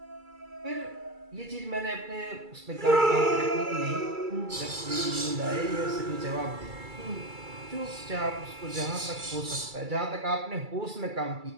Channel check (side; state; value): left; late; 2.3 ms